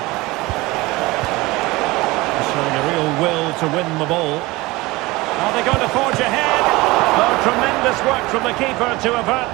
Showing a real will to win the ball. Are they going to forge ahead? Oh, tremendous work from the keeper to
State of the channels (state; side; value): quieter; left; 21.3 dB